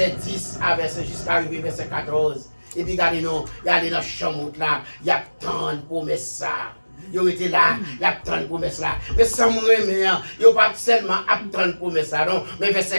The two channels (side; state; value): both; inverted; correlation -1.00